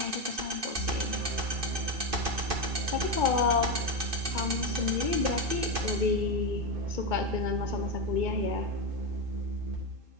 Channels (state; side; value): late; left; 2.5 ms